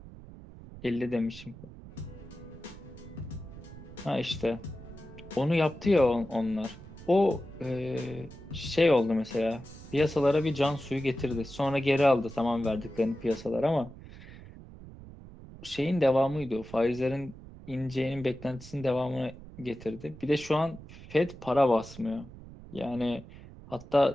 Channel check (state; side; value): noise; right; rumble, 16 dB below the sound